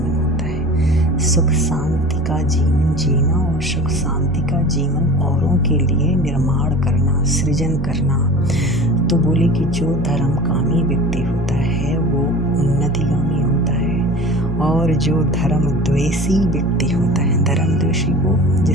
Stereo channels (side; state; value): both; normal; correlation 0.37